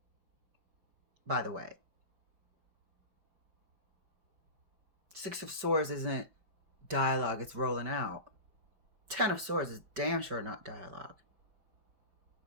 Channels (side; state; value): left; late; 5.2 ms